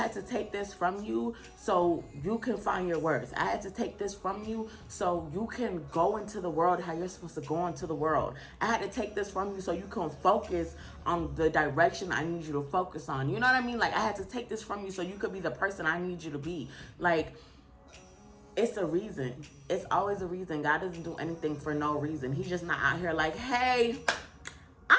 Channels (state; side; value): identical; both; correlation 1.00